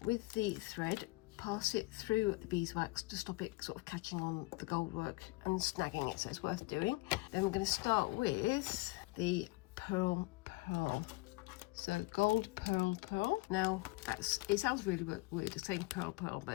with the thread, pass it through the beeswax to stop it sort of catching on the gold work and snagging it, so it's worth doing. Then we're going to start with the pearl. So gold pearl. Now it sounds really weird saying pearl,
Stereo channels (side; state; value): right; quieter; 23.0 dB